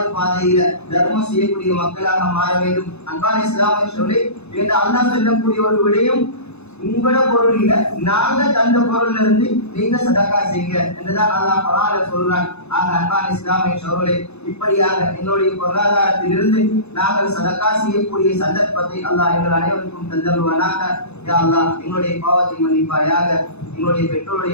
பாதையில தர்மம் செய்யக்கூடிய மக்களாக மாற வேண்டும். அன்பான இஸ்லாமிய சகோதரர்களே, என்று அல்லாஹ் சொல்லக்கூடிய ஒரு விடயம், உங்களோட பொருள் இல்ல, நாங்க தந்த பொருள்ல இருந்து நீங்க சதக்கா செய்யுங்க என்றுதான் அல்லாஹ் குர்ஆன்ல சொல்றான். ஆக அன்பான இஸ்லாமிய சகோதரர்களே, இப்படியாக எங்களுடைய பொருளாதாரத்திலிருந்து நாங்கள் சதக்கா செய்யக்கூடிய சந்தர்ப்பத்தை அல்லாஹ் எங்கள் அனைவருக்கும் தந்தருவானாக. யா அல்லாஹ், எங்களுடைய பாவத்தை மன்னிப்பாயாக, எங்களுடைய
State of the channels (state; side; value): late; right; 0.81 ms